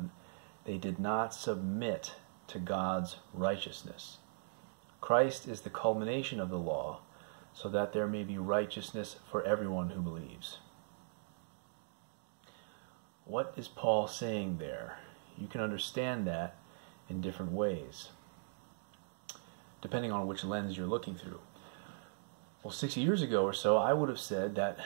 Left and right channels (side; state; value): left; silent; digital silence